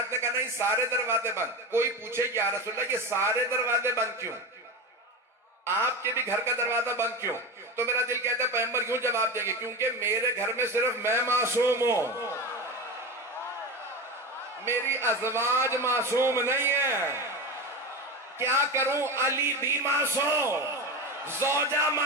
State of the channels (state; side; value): normal; both; correlation 0.22